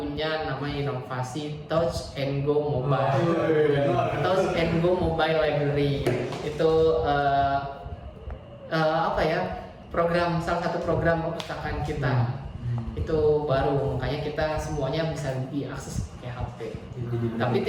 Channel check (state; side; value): identical; both; correlation 1.00